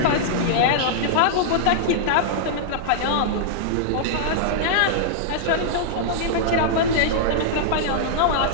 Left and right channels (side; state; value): both; different; correlation -0.02